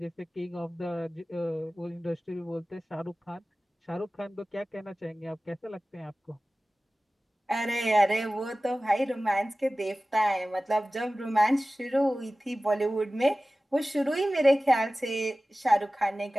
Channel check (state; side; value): normal; both; correlation 0.97